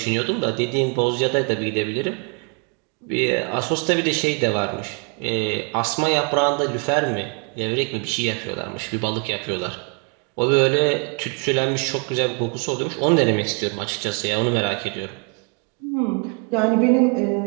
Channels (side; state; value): left; quieter; 36.2 dB